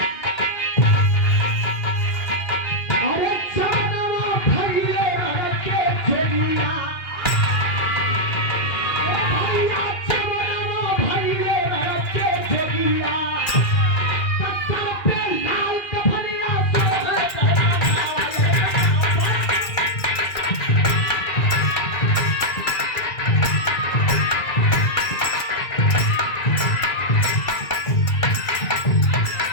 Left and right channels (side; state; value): right; late; 2.4 ms